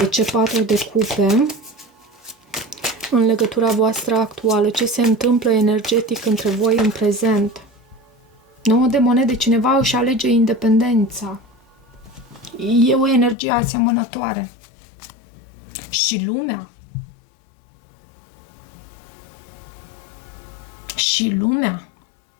ce 4 de cupe? În legătura voastră actuală, ce se întâmplă energetic între voi în prezent? 9 de monede, cineva își alege independența. E o energie asemănătoare. Și lumea. Și lumea.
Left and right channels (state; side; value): drops out; right; at 13.4 s